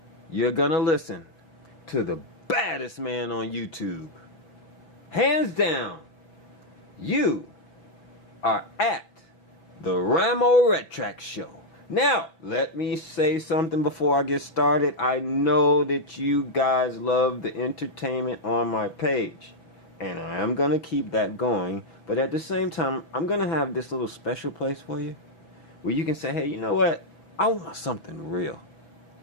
You're gonna listen to the baddest man on YouTube. Hands down, you are at the RAMO RETRAC show. Now, let me say something before I get started. I know that you guys love the entertainment on my page, and I am going to keep that going. But at the same time, I'm going to have this little special place for you where you can say, hey, you know what? I want something real.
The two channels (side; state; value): right; late; 6.5 ms